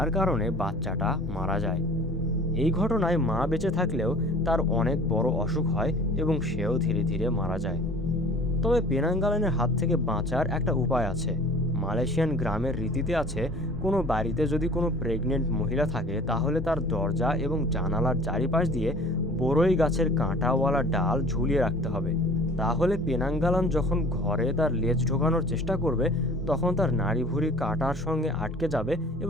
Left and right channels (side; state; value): both; normal; correlation 0.46